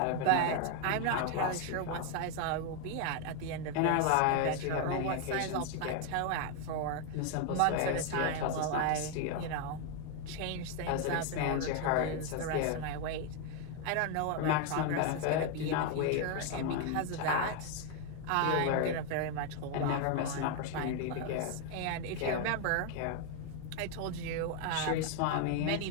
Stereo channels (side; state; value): both; different; correlation 0.01